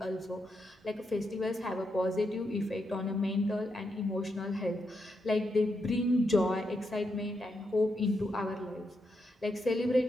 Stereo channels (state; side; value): normal; both; correlation 0.83